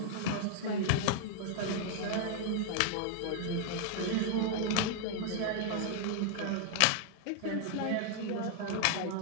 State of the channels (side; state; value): both; different; correlation 0.00